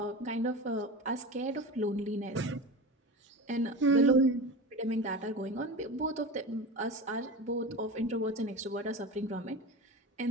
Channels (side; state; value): both; normal; correlation 0.28